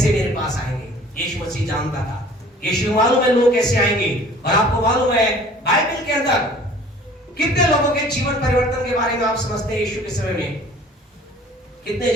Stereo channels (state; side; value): normal; both; correlation 0.50